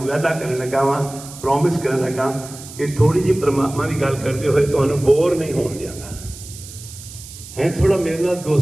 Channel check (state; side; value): noise; right; hiss, 15 dB below the sound